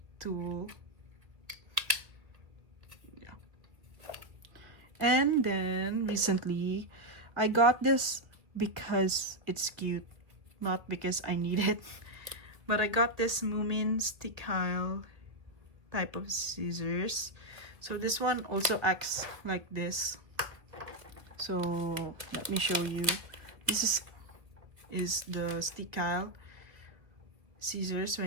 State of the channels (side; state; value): left; late; 1.4 ms